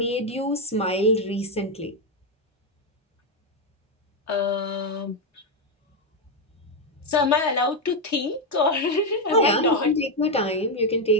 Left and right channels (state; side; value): normal; both; correlation 0.04